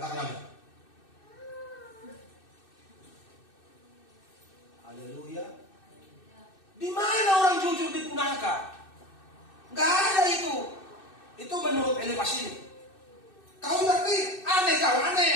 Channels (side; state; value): right; late; 2.6 ms